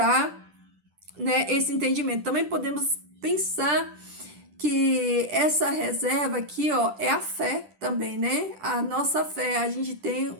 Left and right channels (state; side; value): late; left; 10 ms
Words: né, esse entendimento. Também podemos pensar que essa reserva aqui, ó, é a fé também, né? A nossa fé, a gente tem